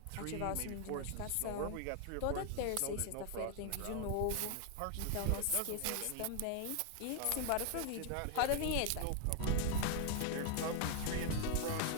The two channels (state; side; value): different; both; correlation 0.00